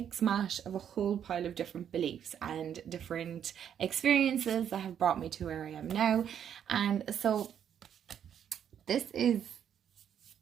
mash of a whole pile of different beliefs and different experiences that have brought me to where I am now. And so this is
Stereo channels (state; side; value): quieter; left; 9.0 dB